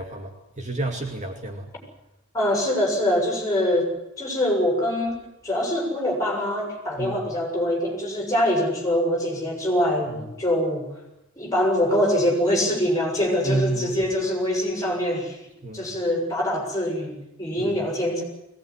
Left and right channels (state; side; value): normal; both; correlation 0.52